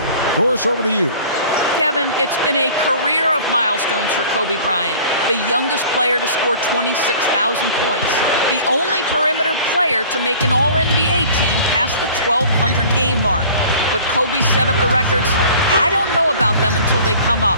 Doris, over to you. Kevin, it's been a career of milestones for Kobe Bryant, the youngest player to score 26,000 points, the only perimeter player to make an All-NBA team past the 1,200 game mark. But Kobe set up the records. I don't know about them until they come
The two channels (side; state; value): both; inverted; correlation -0.46